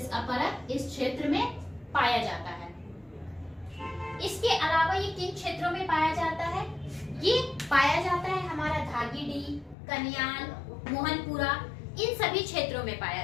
परत इस क्षेत्र में पाया जाता है। इसके अलावा ये किन क्षेत्रों में पाया जाता है? ये पाया जाता है हमारा धागीडीह, कन्याल, मोहनपुरा, इन सभी क्षेत्रों में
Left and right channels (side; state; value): right; drops out; at 9.8 s